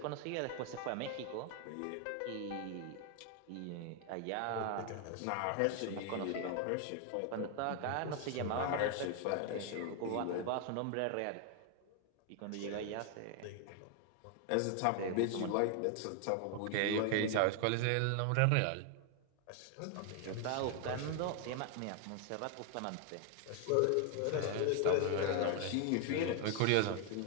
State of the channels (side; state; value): both; different; correlation 0.00